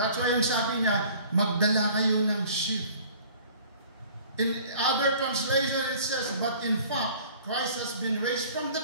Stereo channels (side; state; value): both; inverted; correlation -0.49